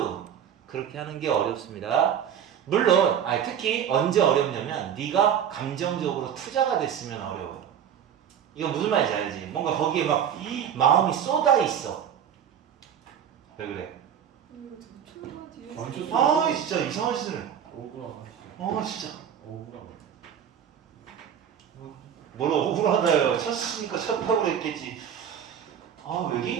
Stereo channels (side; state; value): left; quieter; 8.8 dB